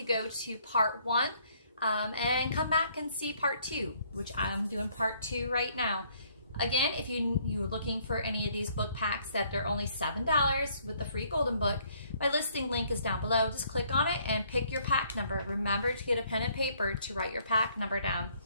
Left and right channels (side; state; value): both; inverted; correlation -0.65